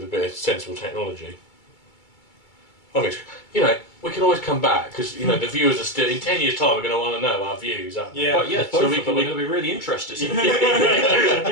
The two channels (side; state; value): right; late; 2.3 ms